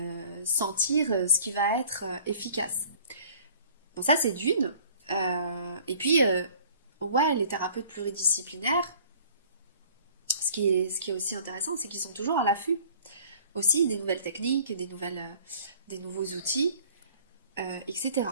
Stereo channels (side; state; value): both; inverted; correlation -0.52